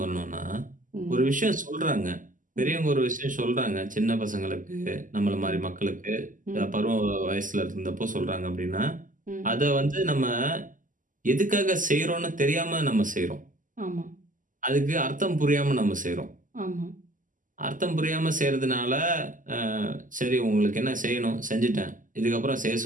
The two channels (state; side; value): late; left; 0.38 ms